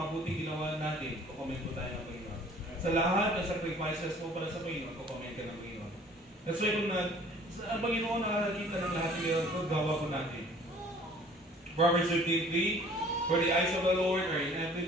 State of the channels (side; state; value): both; normal; correlation 0.52